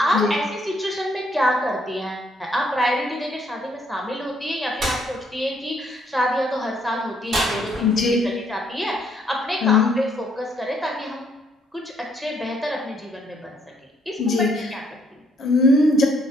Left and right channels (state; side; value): normal; both; correlation 0.69